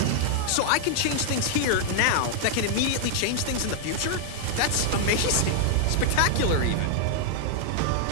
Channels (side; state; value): both; different; correlation -0.01